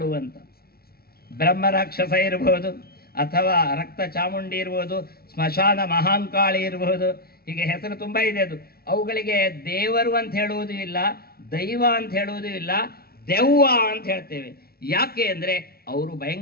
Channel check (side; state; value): right; late; 0.44 ms